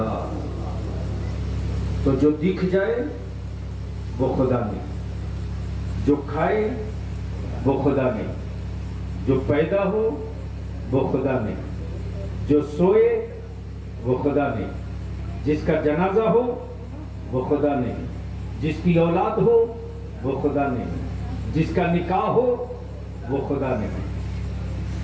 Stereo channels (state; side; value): identical; both; correlation 1.00